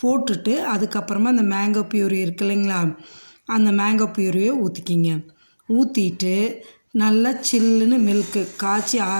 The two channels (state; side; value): inverted; both; correlation -1.00